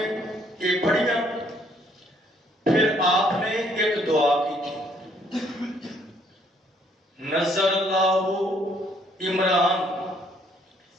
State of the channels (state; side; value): normal; both; correlation 0.66